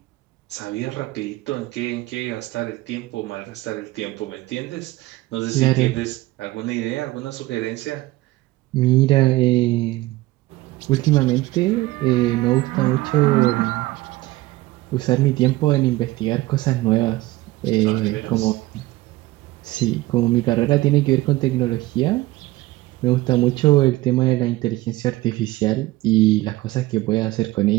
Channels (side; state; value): left; quieter; 18.5 dB